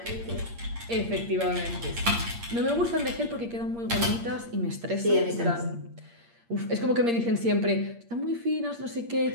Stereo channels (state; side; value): late; left; 8.6 ms